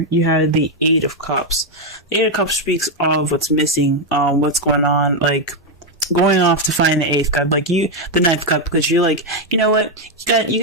you have the Eight of Cups. The Eight of Cups speaks of what's missing, what's going on, like going off to find the Eighth Cup, the Ninth Cup, because you're like, you know what,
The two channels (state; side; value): normal; both; correlation 0.02